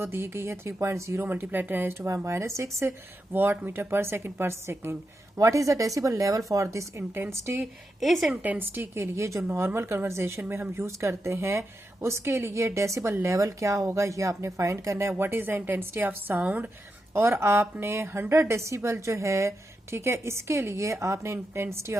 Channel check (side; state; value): both; normal; correlation 0.87